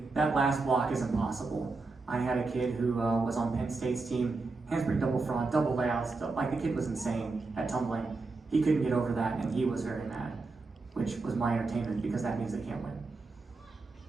That last block is impossible. I had a kid who was on Penn State's team, handspring double front, double layouts, like the kid was insane at tumbling. He couldn't get over that and he was very mad, which was my entertainment because that means they can't win.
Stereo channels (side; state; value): left; quieter; 3.8 dB